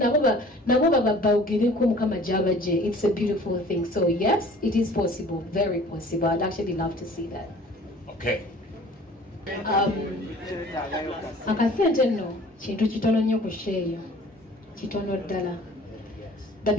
nabo babogereko mukama gy'abagye it's a beautiful thing so yes it is possible very possible I'd actually love to see that okay akasente nno kintu kitono nnyo ku sheeyo kitono ddala the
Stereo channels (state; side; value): normal; both; correlation 0.49